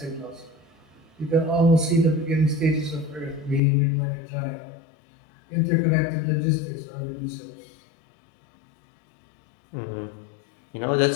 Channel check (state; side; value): drops out; right; at 3.6 s